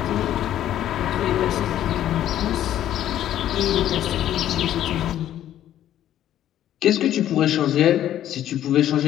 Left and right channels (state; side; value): quieter; right; 11.8 dB